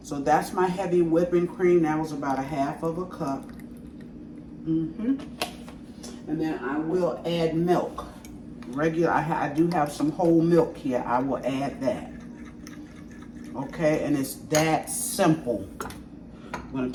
So that's my heavy whipping cream. That was about a half of a cup. And then I will add milk. Regular, I do have some whole milk here. I will add that. Okay, and it's that simple. I'm gonna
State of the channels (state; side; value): identical; both; correlation 1.00